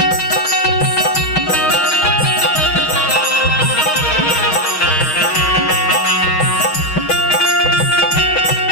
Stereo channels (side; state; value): right; late; 6.5 ms